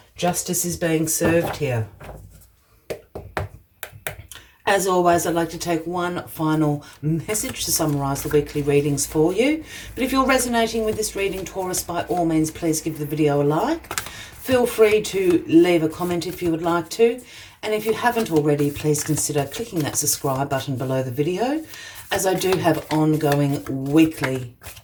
justice is being served here. As always, I'd like to take one final message to summarise the weekly readings for you. But if you're resonating with this reading, Taurus, by all means, please give the video a like. Feel free to leave a comment if you would like to. And if you haven't already, please consider clicking that subscribe button below the video, as I do have ongoing weekly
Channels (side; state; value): both; identical; correlation 1.00